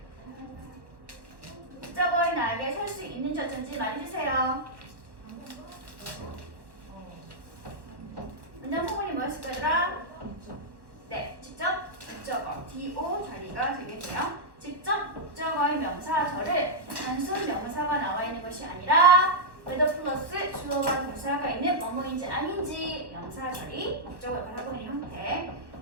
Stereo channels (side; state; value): left; late; 1.1 ms